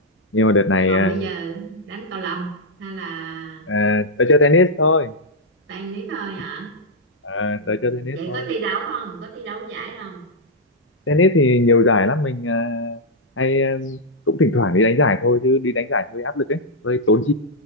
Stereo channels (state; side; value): normal; both; correlation -0.04